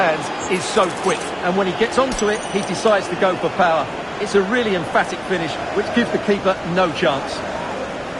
is so quick. And when he gets onto it, he decides to go for power. It's a really emphatic finish, which gives the keeper no chance.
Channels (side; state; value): both; identical; correlation 1.00